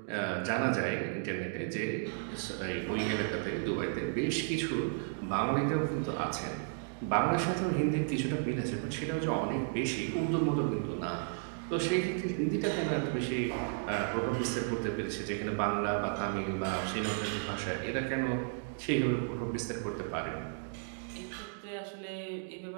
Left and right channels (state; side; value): silent; left; digital silence